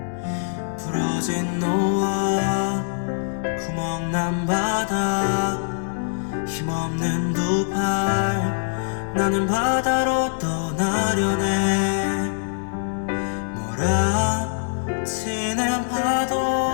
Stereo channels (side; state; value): right; silent; digital silence